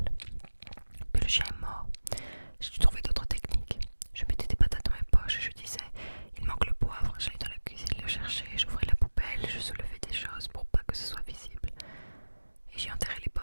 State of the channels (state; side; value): inverted; both; correlation -1.00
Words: Mais le chien est mort. J'ai dû trouver d'autres techniques. Je mettais des patates dans mes poches et je disais il manque le poivre. J'allais dans la cuisine le chercher, j'ouvrais la poubelle, je soulevais des choses pour pas que ce soit visible. Et j'y enterrais les